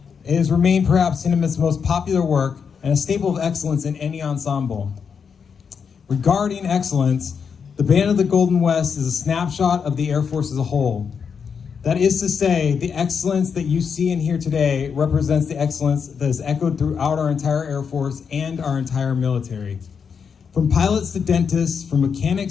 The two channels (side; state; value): right; quieter; 6.4 dB